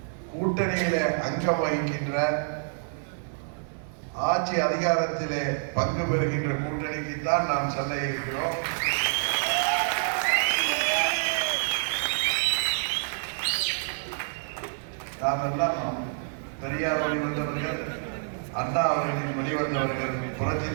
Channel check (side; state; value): left; silent; digital silence